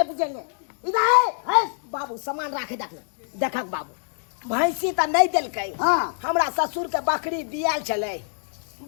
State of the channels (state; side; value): silent; right; digital silence